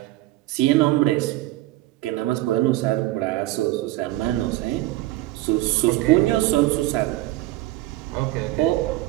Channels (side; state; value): left; quieter; 17.0 dB